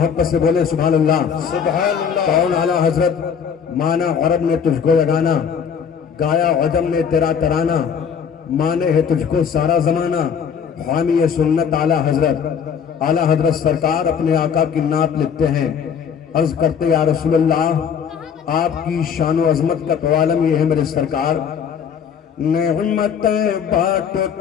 से बोले सुभान अल्लाह। कौन आला हजरत, माना अरब ने तुझको यगाना, गाया अजम ने तेरा तराना, माने है तुझको सारा जमाना, हामी ये सुन्नत आला हजरत। आला हजरत सरकार अपने आका की नात लिखते हैं, अर्ज करते या रसूलल्लाह आपकी शान व अजमत का तो आलम ये है मेरे सरकार। नेमतें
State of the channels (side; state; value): right; quieter; 7.2 dB